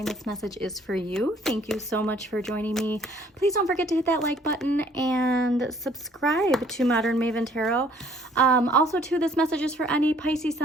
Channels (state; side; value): normal; both; correlation 0.60